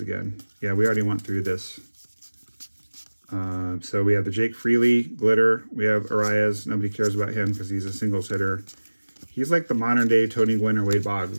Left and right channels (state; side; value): inverted; both; correlation -1.00